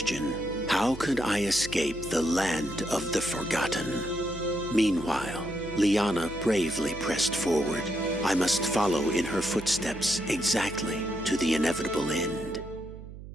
How could I escape the land of the forgotten? Meanwhile, Liana bravely pressed forward. I must follow in her footsteps exactly to the inevitable end.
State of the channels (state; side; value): noise; right; hum, 13 dB below the sound